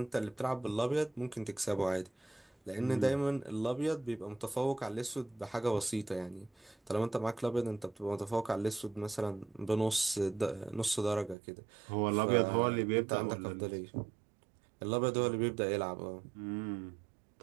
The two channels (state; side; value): drops out; left; at 11.4 s